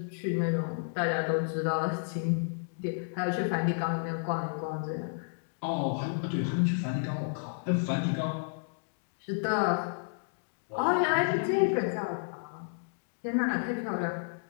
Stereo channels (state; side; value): silent; right; digital silence